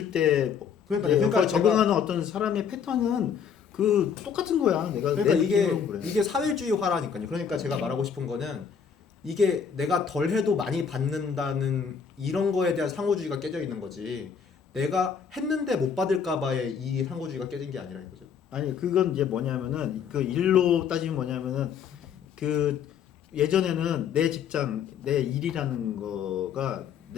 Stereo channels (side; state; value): right; quieter; 7.0 dB